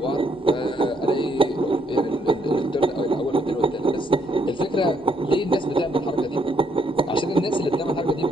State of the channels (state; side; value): normal; both; correlation 0.71